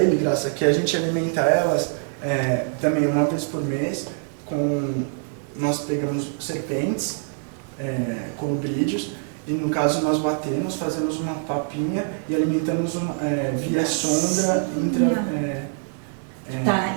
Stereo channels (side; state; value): left; silent; 63 dB below the other